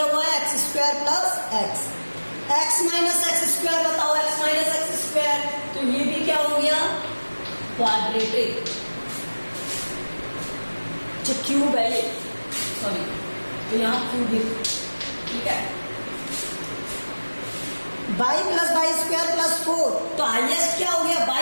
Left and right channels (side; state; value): both; inverted; correlation -1.00